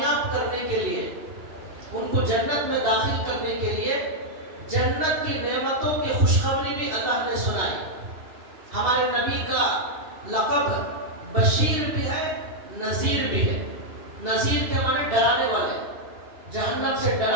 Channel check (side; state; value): left; late; 2.3 ms